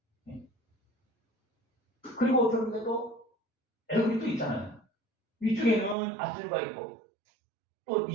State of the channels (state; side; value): drops out; left; at 6.0 s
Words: 그리고 어떤 게 또 애굽이 또 있잖아요. 위쪽에는 아수르가 있고 또